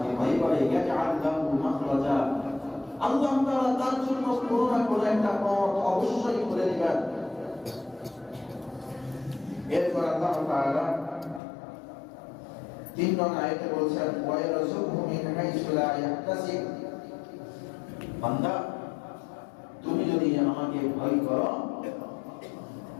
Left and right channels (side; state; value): right; drops out; at 11.4 s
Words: ভয় করে, ইয়াজআল লাহু মাখরাজা, আল্লাহ তাআলা তার জন্য কোনো না কোনো একটা পথ অবশ্যই করে দিবেন। এরপর আল্লাহ তাআলা 3 নং আয়াতে বলছেন, ওয়া ইয়ারযুকহু মিন হাইসু লা ইয়াহতাসিব, বান্দা তুমি যদি আমাকে ভয় করো,